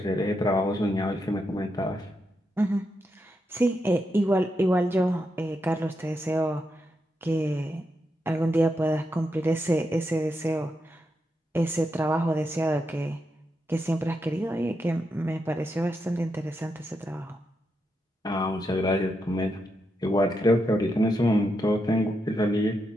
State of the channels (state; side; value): normal; both; correlation 0.84